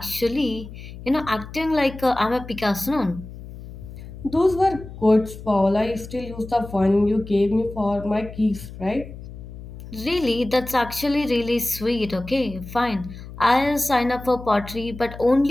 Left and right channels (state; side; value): noise; left; hum, 14 dB below the sound